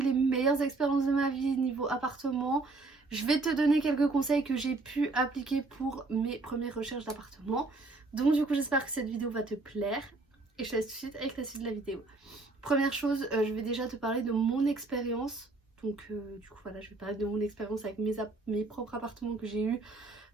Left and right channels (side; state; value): left; quieter; 3.4 dB